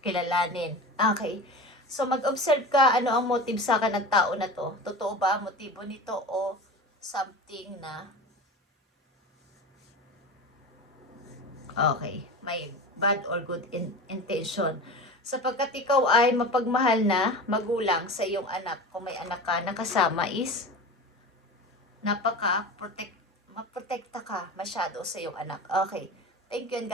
Okay. So, mag-observe ka ano ang motive sa akin ng tao na to. Totoo ba ang motibo nito o something na okay, may bad or good intention. Sapagkat ikaw ay mapagmahal na magulang sa iyong anak. Kung may anak ka, nakasama is maprotekta ka masyado sa iyong anak. Okay. Thank you and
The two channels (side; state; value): both; normal; correlation 0.31